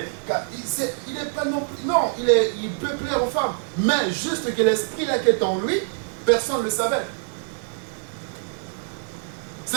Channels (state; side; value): silent; left; 62 dB below the other